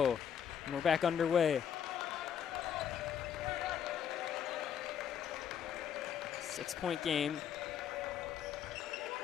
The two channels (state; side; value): quieter; right; 8.6 dB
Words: and we're back underway. 6-point game.